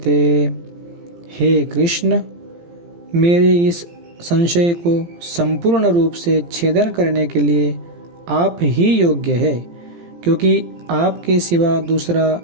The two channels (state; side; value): late; left; 17 ms